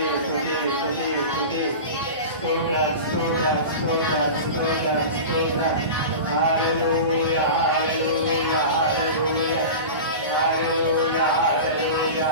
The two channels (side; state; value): both; inverted; correlation -0.30